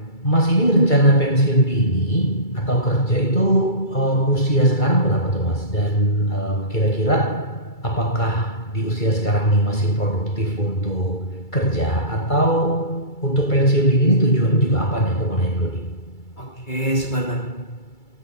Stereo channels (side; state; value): right; late; 2.3 ms